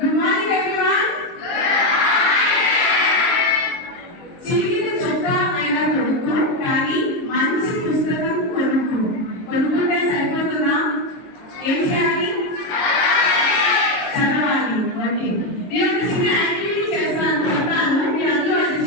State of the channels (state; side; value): late; right; 22 ms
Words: morning everyone. చిన్న చొక్కా అయినా కొనుక్కో, కానీ మంచి పుస్తకం కొనుక్కుంటే సరిపోతుందా? ఏం చేయాలి? చదవాలి. ఓకే, నేను ఒక చిన్న యాక్టివిటీ చేస్తాను, మీరు అందరూ అది